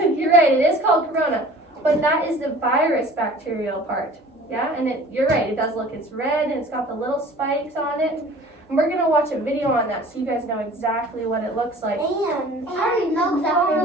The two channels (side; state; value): both; normal; correlation 0.46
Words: You're right, it is called corona, but that is the virus bacterial part. Yeah, and you're right, it does look, it's red and it's got the little spikes on it. And we're gonna watch a video on that so you guys know exactly what it looks like. And I already know exactly